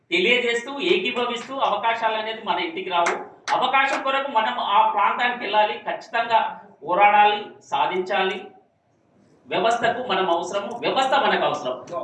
తెలియజేస్తూ, ఏకీభవిస్తూ, అవకాశాలు అనేది మన ఇంటికి రావు, అవకాశం కొరకు మనం ఆ ప్రాంతానికి వెళ్ళాలి, ఖచ్చితంగా పోరాడాలి, సాధించాలి. వ్యవస్థకు మనం అవసరము, వ్యవస్థ మనకు అవసరం.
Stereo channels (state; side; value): identical; both; correlation 1.00